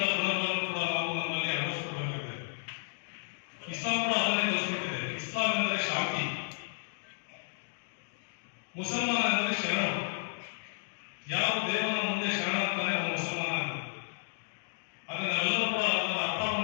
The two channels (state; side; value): silent; right; digital silence